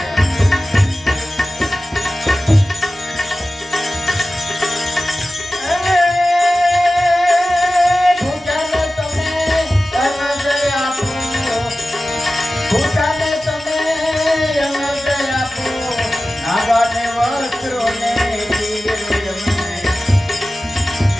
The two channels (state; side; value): normal; both; correlation 0.95